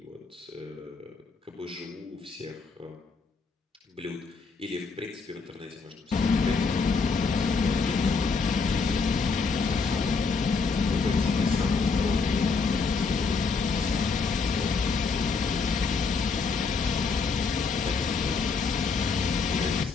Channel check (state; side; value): quieter; right; 4.7 dB